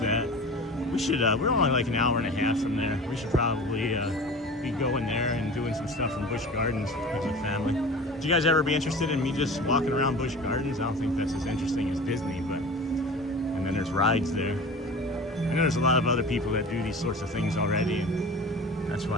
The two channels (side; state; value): both; normal; correlation 0.37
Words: We should, we're only like an hour and a half from there. We should probably be going there and doing some stuff from Busch Gardens as a family. Would you guys ever be interested in me just walking around Busch Gardens? I don't think that's as interesting as Disney, but, and then there's rides there. I know there's a lot of other people that do these sorts of things already, and that's